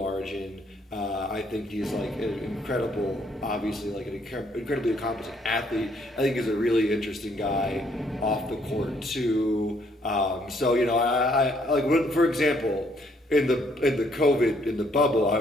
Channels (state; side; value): normal; both; correlation 0.68